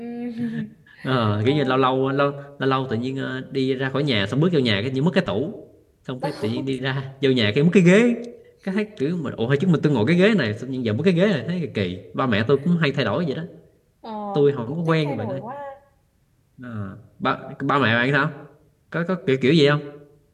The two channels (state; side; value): identical; both; correlation 1.00